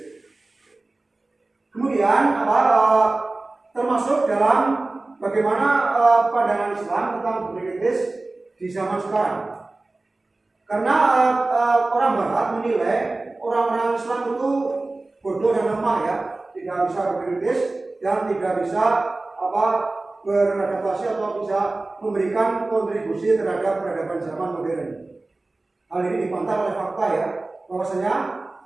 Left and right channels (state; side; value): quieter; left; 3.1 dB